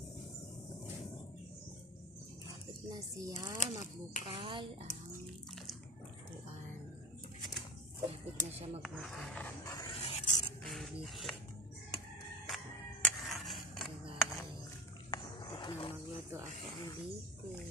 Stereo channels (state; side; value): normal; both; correlation 0.28